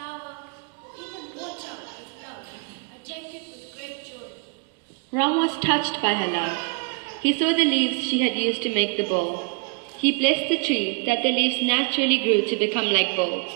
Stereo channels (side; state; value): left; quieter; 34.6 dB